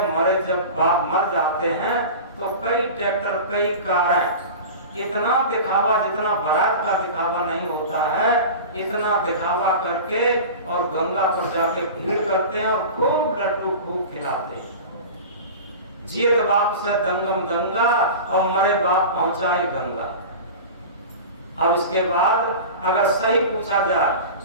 मरे जब बाप मर जाते हैं तो कई ट्रैक्टर, कई कारें, इतना दिखावा, जितना बारात का दिखावा नहीं होता है, इतना दिखावा करके और गंगा पर जाके भीड़ करते हैं और खूब लड्डू खूब खिलाते हैं। जियत बाप से दंगम दंगा और मरे बाप पहुंचाए गंगा। अब इसके बाद अगर सही पूछा जाए,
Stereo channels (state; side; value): inverted; both; correlation -0.33